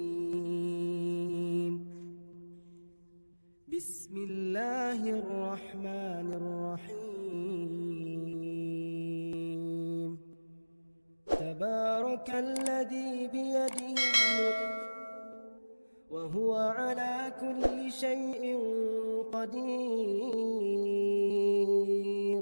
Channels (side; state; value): both; inverted; correlation -1.00